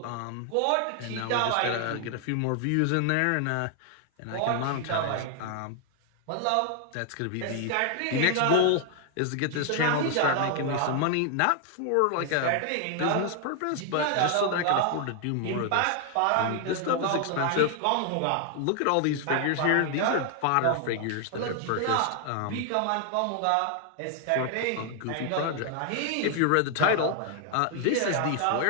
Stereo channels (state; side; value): different; both; correlation 0.00